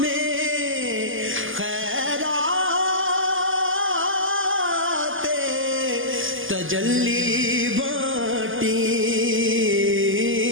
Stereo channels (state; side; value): late; left; 0.58 ms